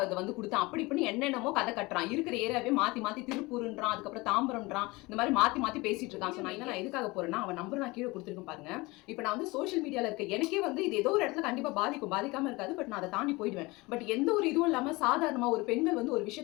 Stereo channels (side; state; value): right; quieter; 23.1 dB